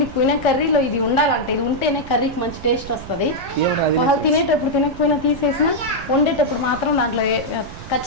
కర్రీలో ఇది ఉండాలంటే, ఇది ఉంటేనే కర్రీకి మంచి టేస్ట్ వస్తుంది. వాళ్ళు తినేటప్పుడు తినకపోయినా తీసేసినా వండేటప్పుడు మాత్రం దాంట్లో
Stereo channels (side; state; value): right; noise; rumble, 14 dB below the sound